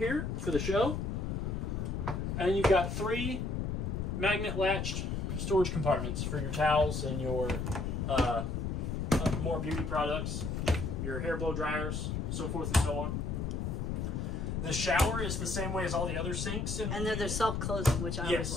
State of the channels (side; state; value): left; noise; rumble, 2 dB below the sound